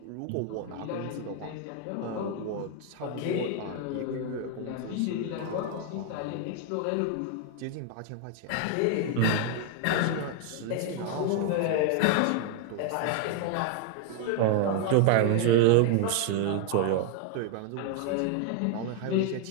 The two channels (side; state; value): both; different; correlation 0.00